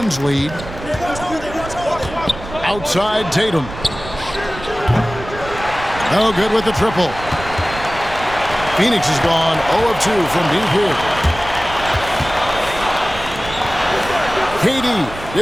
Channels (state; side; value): noise; right; rumble, 12 dB below the sound